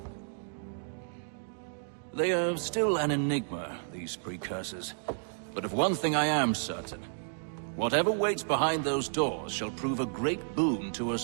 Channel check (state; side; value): silent; left; digital silence